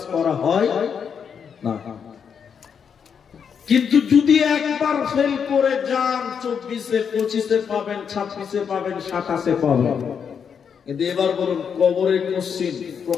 করা হয় না। কিন্তু যদি একবার ফেল করে যান 24-এ 25-এ পাবেন, 26-এ পাবেন, 27-এ পাবেন। কিন্তু এবার বলুন, কবরের কোশ্চেন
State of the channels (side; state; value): right; quieter; 7.0 dB